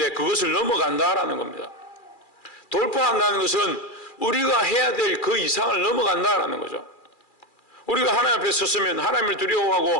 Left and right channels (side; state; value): right; late; 2.4 ms